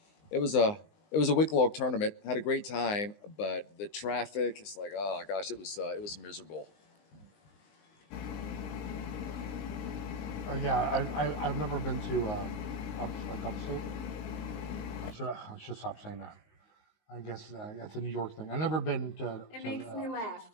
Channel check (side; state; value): right; late; 19 ms